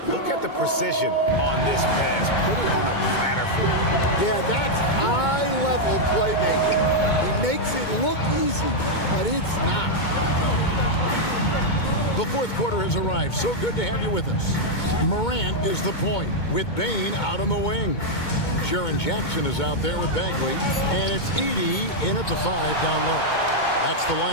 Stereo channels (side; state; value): right; late; 2.2 ms